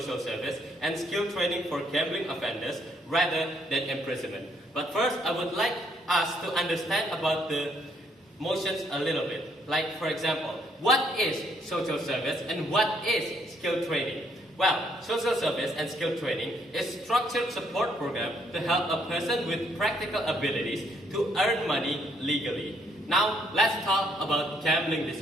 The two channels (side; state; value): both; normal; correlation 0.70